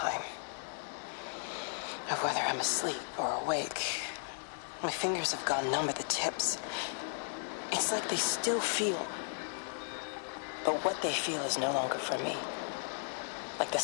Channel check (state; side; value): silent; right; digital silence